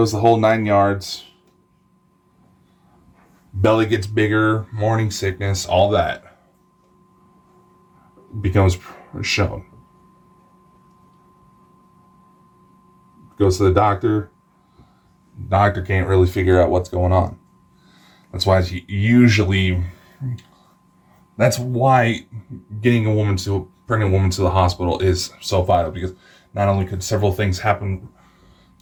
the whole 9 yards. Belly gets bigger, morning sickness, all that becomes shown. Goes to the doctor. Doctor can't really figure out what's going on. That's why getting a pregnant woman to the hospital is so vital, because not only could several things happen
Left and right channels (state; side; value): identical; both; correlation 1.00